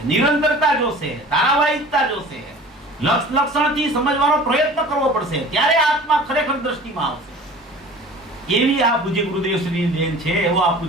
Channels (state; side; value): normal; both; correlation 0.43